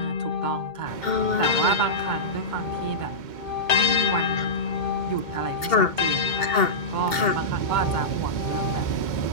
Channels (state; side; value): late; right; 2.7 ms